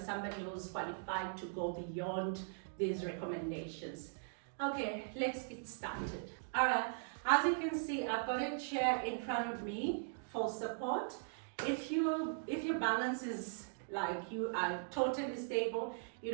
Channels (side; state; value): left; silent; digital silence